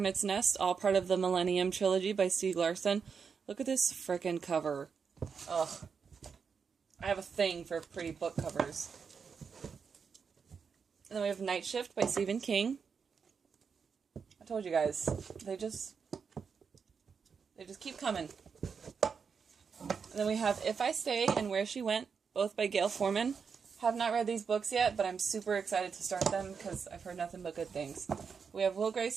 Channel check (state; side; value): quieter; left; 6.0 dB